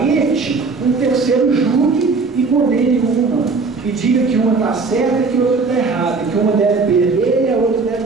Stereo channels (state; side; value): quieter; left; 4.3 dB